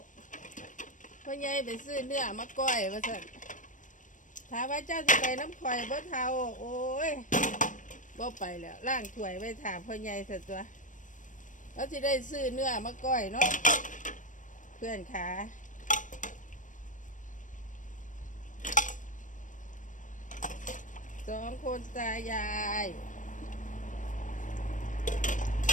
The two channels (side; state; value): right; late; 0.37 ms